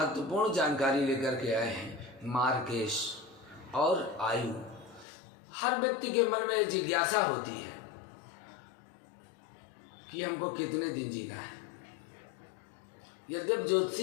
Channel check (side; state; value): right; drops out; at 5.1 s